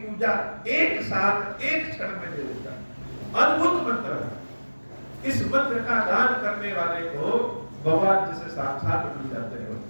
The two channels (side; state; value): both; inverted; correlation -1.00